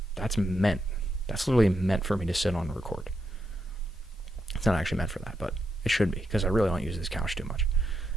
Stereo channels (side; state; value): both; normal; correlation 0.82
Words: That's literally meant for me to sit on and record. It's not actually meant for that, but it should be, because I really don't use this couch too much.